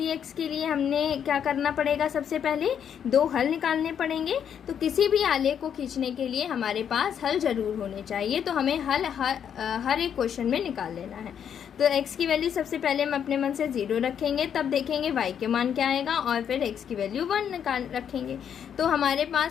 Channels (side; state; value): right; quieter; 8.4 dB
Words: के लिए हमने क्या करना पड़ेगा, सबसे पहले 2 हल निकालने पड़ेंगे। तो किसी भी आलेख को खींचने के लिए हमारे पास हल ज़रूर होने चाहिए, तो हमें हल हर एक क्वेश्चन में निकाल लेना है। तो x की वैल्यू सबसे पहले हम अपने मन से 0 रखेंगे, तब देखेंगे y के मान क्या आएगा, और फिर x की वैल्यू 1 निकाल रखेंगे। तो हमारे